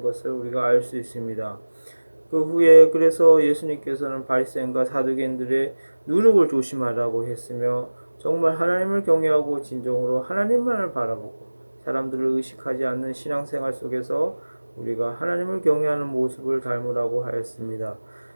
것을 우리가 알 수 있습니다. 그 후에 그래서 예수님께서는 바리새인과 사두개인들의 누룩을 조심하라고 했으며 정말 하나님을 경외하고 진정으로 하나님만을 바라보고 사람들을 의식하지 않는 신앙생활 속에서 우리가 하나님을 경외하는 모습을 닮으라고 하였습니다.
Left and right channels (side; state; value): both; inverted; correlation -1.00